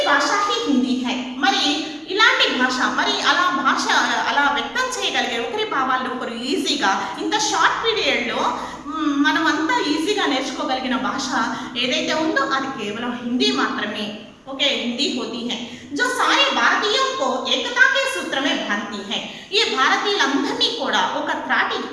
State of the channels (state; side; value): identical; both; correlation 1.00